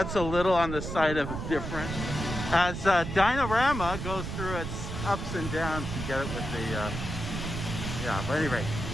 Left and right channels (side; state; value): right; noise; rumble, 5 dB below the sound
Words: a little on the side of different. As Dinorama goes through its ups and downs, you get it with the, but at any rate.